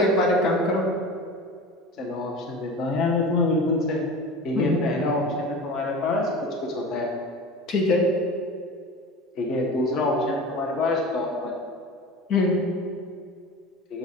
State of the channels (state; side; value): normal; both; correlation 0.33